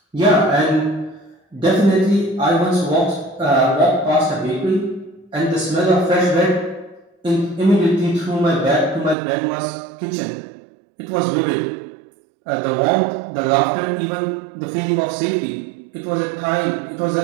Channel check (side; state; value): left; drops out; at 9.2 s